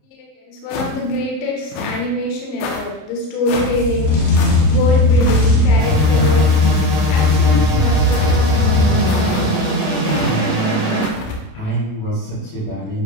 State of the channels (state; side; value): late; right; 28 ms